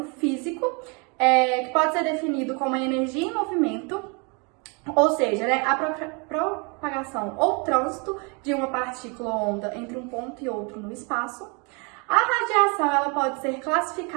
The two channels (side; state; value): left; quieter; 32.8 dB